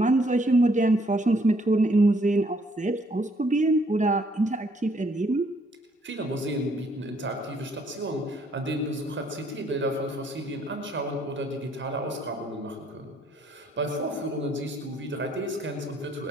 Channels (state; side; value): normal; both; correlation 0.66